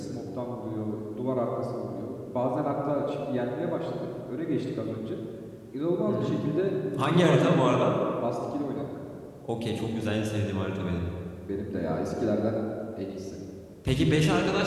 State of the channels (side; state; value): both; identical; correlation 1.00